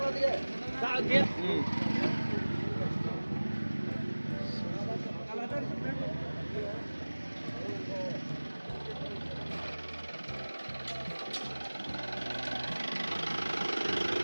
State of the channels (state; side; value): inverted; both; correlation -1.00